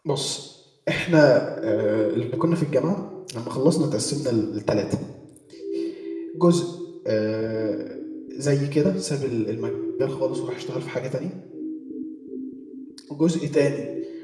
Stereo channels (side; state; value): both; identical; correlation 1.00